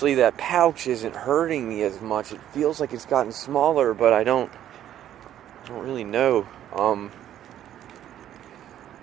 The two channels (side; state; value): left; quieter; 11.4 dB